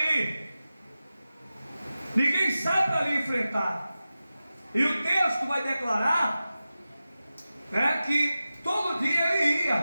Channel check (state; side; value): inverted; both; correlation -0.94